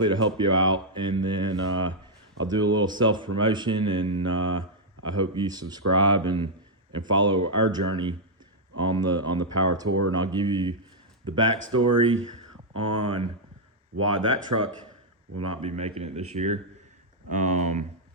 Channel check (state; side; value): normal; both; correlation -0.03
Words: to help you out. And then I'll do a little self promotion, and I hope you subscribe and follow our journey on the power tour. And I'll give you the backstory on why that truck will not be making it this year.